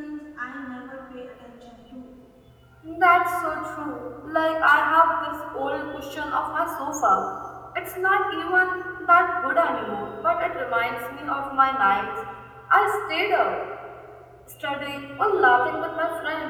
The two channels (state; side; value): identical; both; correlation 1.00